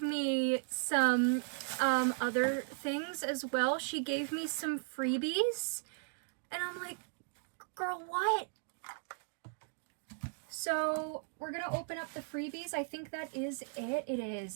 me some other things as well. She gave me some freebies, and I'm like, girl, what? So we're gonna open up the freebies. I think that is it. It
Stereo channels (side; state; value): left; silent; 53 dB below the other